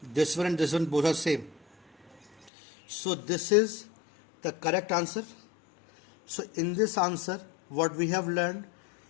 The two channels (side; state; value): right; drops out; at 2.5 s